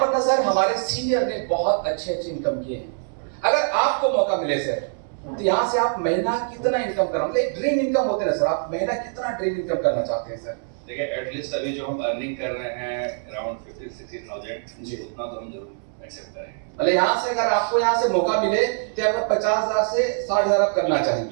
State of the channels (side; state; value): left; silent; 63 dB below the other